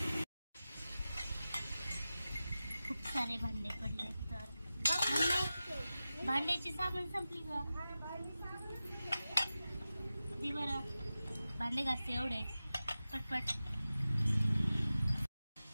खूप सारे भांडे पडले तर भांड्याची साबण संपली का ती बरं भांडे घासते एवढे पटपट.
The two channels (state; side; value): inverted; both; correlation -0.94